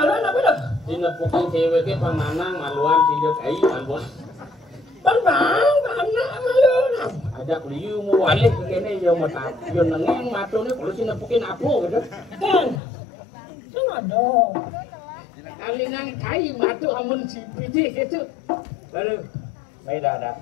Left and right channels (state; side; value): drops out; right; at 12.8 s